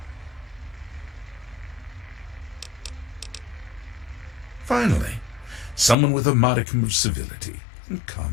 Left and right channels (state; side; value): drops out; right; at 6.0 s